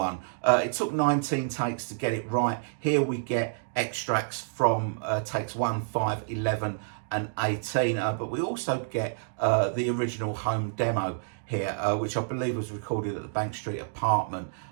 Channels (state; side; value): silent; left; digital silence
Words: It took 19 takes to get it right. Here we get extracts from takes 1, 5, 11 and 18, but we also get the original home demo here, which I believe was recorded at the Bank Street apartment